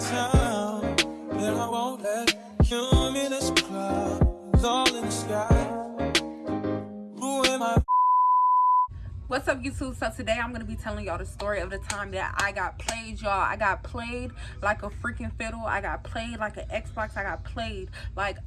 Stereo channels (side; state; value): both; identical; correlation 1.00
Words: and I won't let cumulus clouds all in the sky ruin my. What's up, YouTube? So today I'm gonna be telling y'all the story of the time that I got played, y'all. I got played like a freaking fiddle. I got played like an Xbox. I got played like